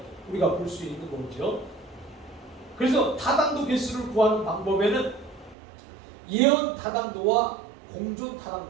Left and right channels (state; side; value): drops out; left; at 5.6 s